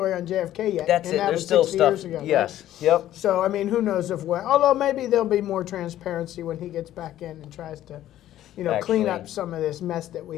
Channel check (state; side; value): quieter; right; 12.9 dB